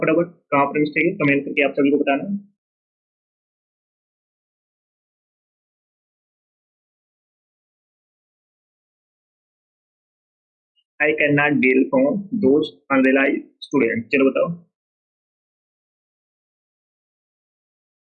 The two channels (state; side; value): identical; both; correlation 1.00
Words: फटाफट कहाँ पर मिस्टेक है, कमेंट करके आप सभी को बताना। I can not deal from those unrealise student. चलो बताओ।